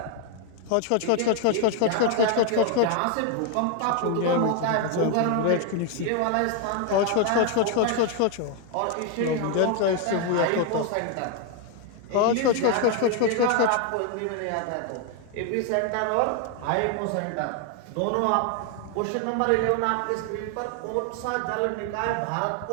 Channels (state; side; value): different; both; correlation 0.01